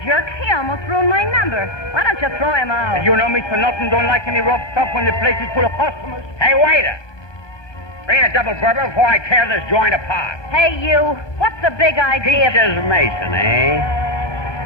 jerk. He almost ruined my number. Why don't you throw him out? You know, Mr. Norton don't like any rough stuff when the place is full of customers. Hey, waiter! Bring a double bourbon before I tear this joint apart. Hey, you. What's the big idea? Peaches Mason, eh?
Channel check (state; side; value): late; right; 1.2 ms